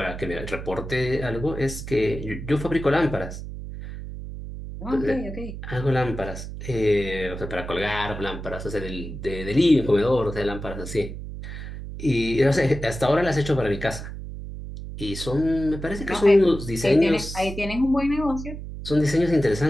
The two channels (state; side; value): noise; right; hum, 9 dB below the sound